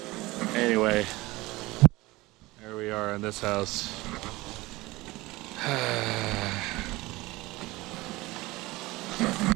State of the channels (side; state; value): left; quieter; 20.5 dB